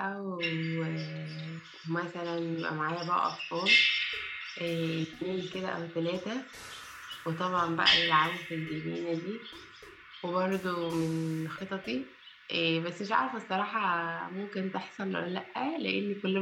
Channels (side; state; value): both; identical; correlation 1.00